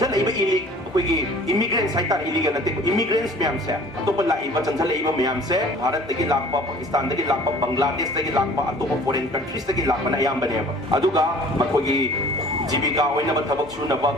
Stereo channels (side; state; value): both; normal; correlation 0.49